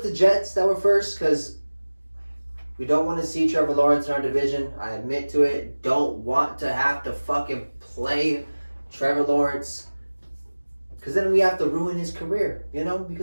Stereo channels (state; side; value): inverted; both; correlation -1.00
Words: the Jets that were first, because we don't want to see Trevor Lawrence in our division. I admit to it. Don't want to have to fucking play Trevor Lawrence, because then we have to ruin his career,